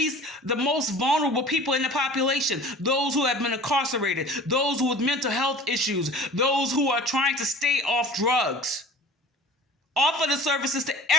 most vulnerable people in the population. Those who have been incarcerated, those with mental health issues, those who are trying to stay off drugs. Offer the services to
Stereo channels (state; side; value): normal; both; correlation 0.42